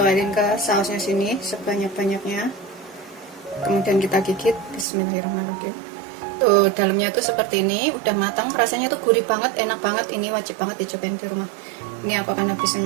ke sausnya sini sebanyak-banyaknya. Kemudian kita gigit. Bismillahirrahmanirrahim. Tuh dalamnya tuh seperti ini, udah matang, rasanya tuh gurih banget, enak banget. Ini wajib banget dicobain di rumah. Ini aku akan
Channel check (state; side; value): drops out; left; at 4.9 s